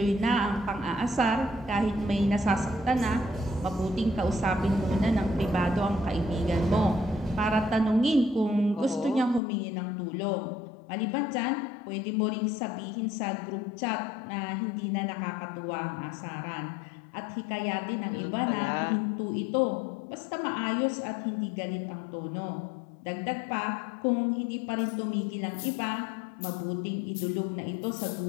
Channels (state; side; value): drops out; right; at 9.4 s